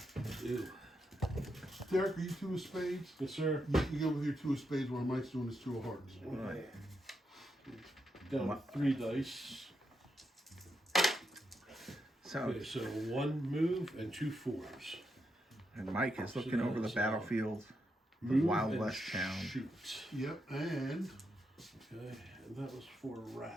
Ew. Derek, are you 2 of spades? Yes, sir. You go with your 2 of spades while Mike's doing his 2 of hearts. Right. Down to 3 dice. So, Okay, so 1 move and 2 4s. and Mike is looking So over the that's, battlefield, the Move Wild and West town. Shoot. Yep, and Okay, and that was for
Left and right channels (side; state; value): both; normal; correlation 0.83